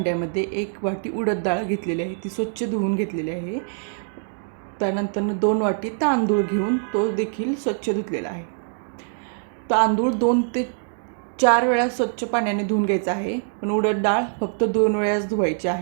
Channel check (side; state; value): left; silent; digital silence